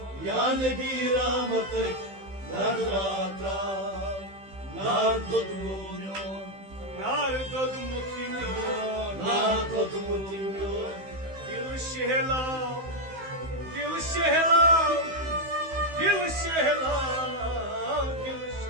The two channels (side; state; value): left; late; 15 ms